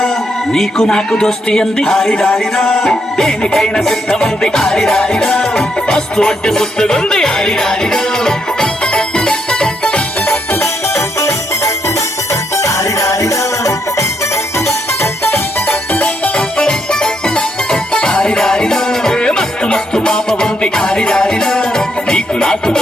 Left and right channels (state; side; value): normal; both; correlation 0.77